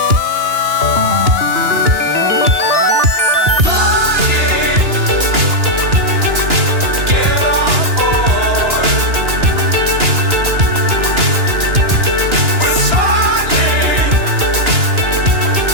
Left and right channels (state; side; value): late; left; 2.9 ms